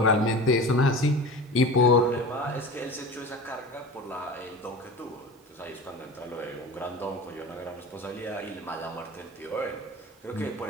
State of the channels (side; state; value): both; normal; correlation 0.34